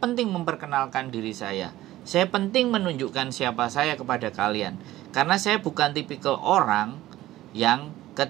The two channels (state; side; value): quieter; left; 15.5 dB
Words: memperkenalkan diri saya. Saya penting menunjukkan siapa saya kepada kalian. Karena saya bukan tipikal orang yang